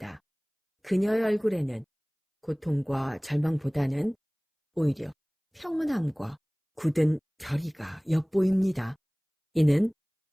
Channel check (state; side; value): identical; both; correlation 1.00